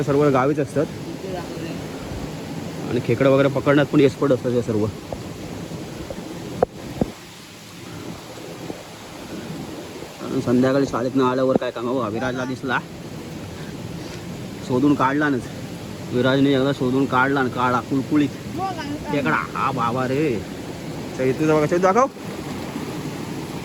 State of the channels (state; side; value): identical; both; correlation 1.00